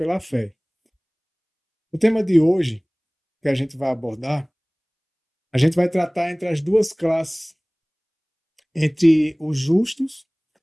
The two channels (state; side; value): identical; both; correlation 1.00